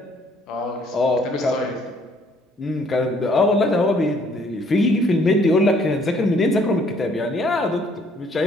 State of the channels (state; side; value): normal; both; correlation 0.63